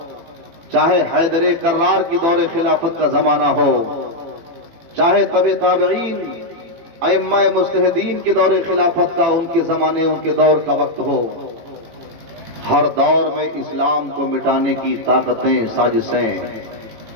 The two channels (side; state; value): left; late; 18 ms